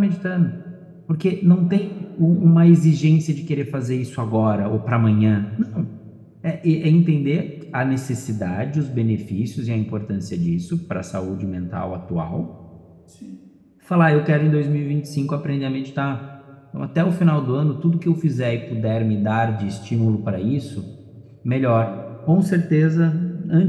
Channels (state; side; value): identical; both; correlation 1.00